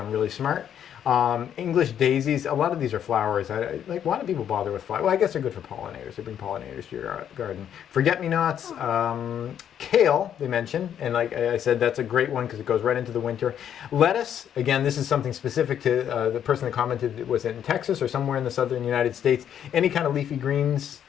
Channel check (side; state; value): right; quieter; 9.4 dB